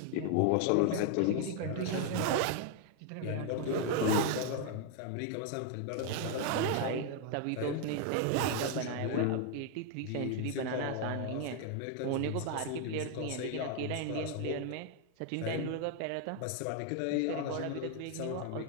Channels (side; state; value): both; different; correlation 0.00